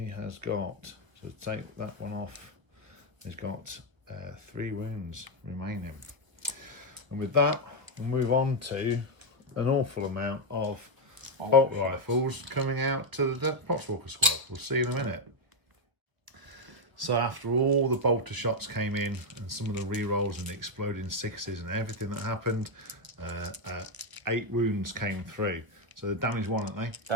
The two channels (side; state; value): left; late; 1.2 ms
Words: has got, so take that one off, he's got 3 wounds remaining. And with that, we'll move on to an awful amount of bolt rifles coming out to the Poxwalker squad. We'll see in a minute. So after all the bolter shots came in and some of the re-rolls and the exploding 6s and everything that happened, 8 wounds came through. So the damage 1, aren't they?